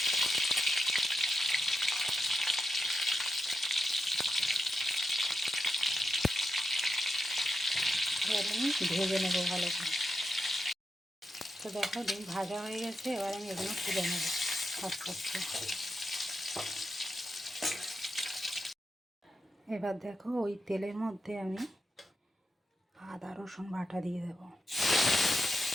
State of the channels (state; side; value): normal; both; correlation 0.86